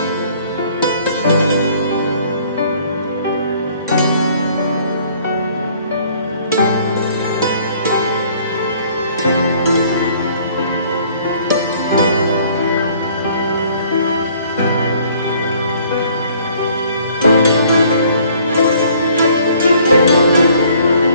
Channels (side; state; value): both; inverted; correlation -0.58